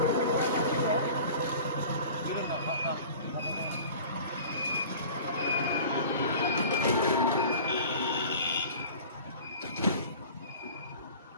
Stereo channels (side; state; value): both; inverted; correlation -0.42